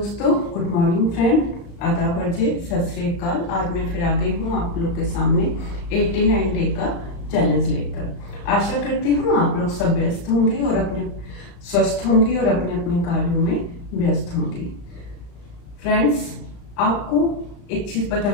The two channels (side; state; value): right; late; 35 ms